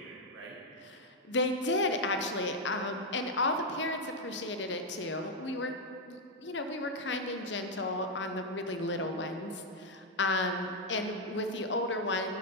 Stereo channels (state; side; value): normal; both; correlation 0.01